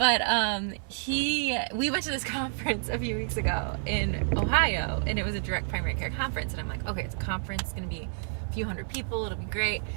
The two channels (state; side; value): silent; left; 58 dB below the other